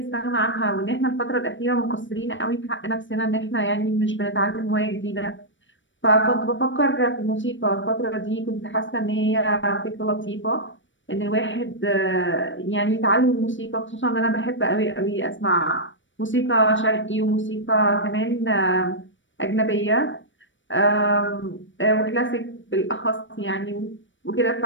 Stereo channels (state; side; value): late; right; 0.56 ms